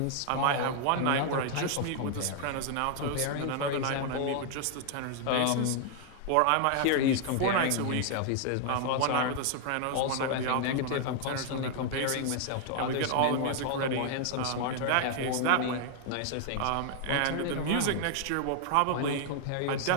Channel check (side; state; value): both; different; correlation 0.00